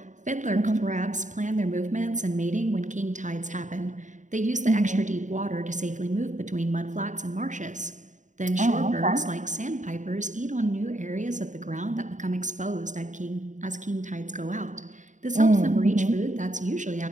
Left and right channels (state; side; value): late; left; 0.36 ms